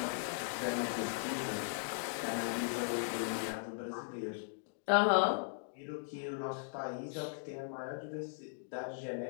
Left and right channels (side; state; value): right; silent; digital silence